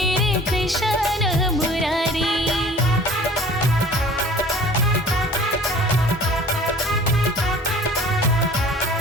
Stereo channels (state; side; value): normal; both; correlation 0.47